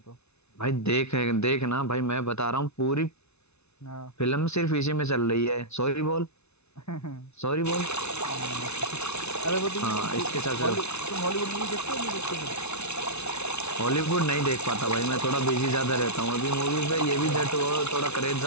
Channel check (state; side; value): late; right; 0.81 ms